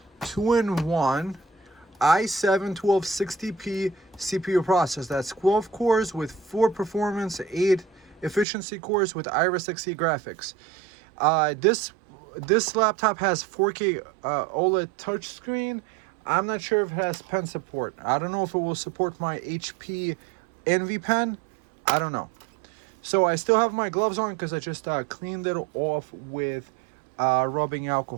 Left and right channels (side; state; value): left; drops out; at 8.5 s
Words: 2-in-1 i7-1260p CPU processor. That's 12 cores with 4 performance, 8 efficiency cores with Iris Xe graphics. This laptop has 4K OLED touchscreen. I'm not sure if it has pen support. I don't know if it will support my HP Envy pen. I don't know. So I still have my gloves on because I just cleaned it off with rubbing